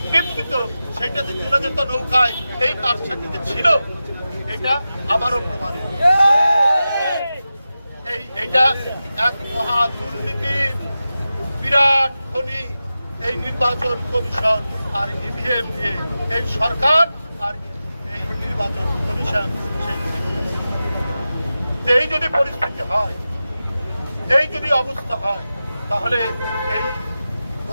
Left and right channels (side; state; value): both; inverted; correlation -0.93